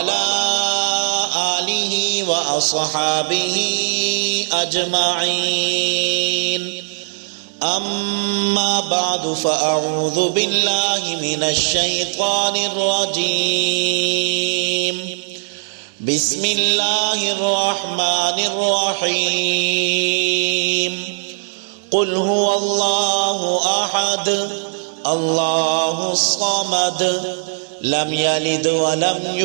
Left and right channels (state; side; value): silent; left; 67 dB below the other